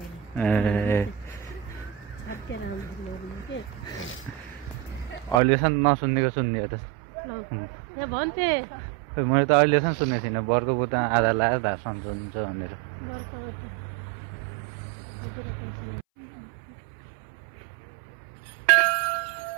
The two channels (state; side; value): drops out; left; at 5.4 s